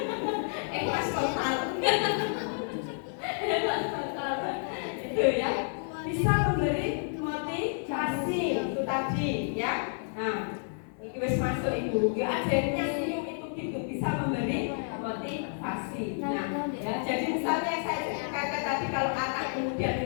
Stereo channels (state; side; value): silent; right; 58 dB below the other